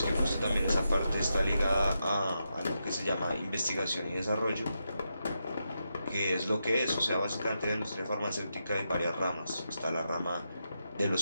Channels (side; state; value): both; inverted; correlation -0.86